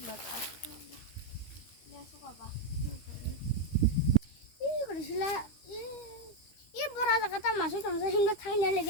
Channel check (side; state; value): right; late; 13 ms